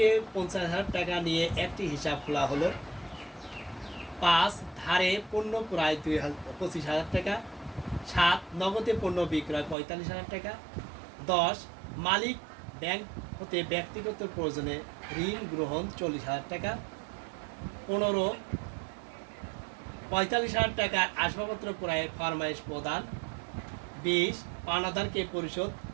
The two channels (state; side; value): drops out; left; at 9.8 s